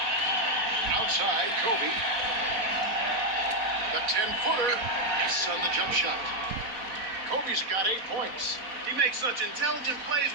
Outside, Kobe. The 10-footer. Yes, on the jump shot. Kobe's got 8 points. He makes such intelligent plays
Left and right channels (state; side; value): late; left; 4.1 ms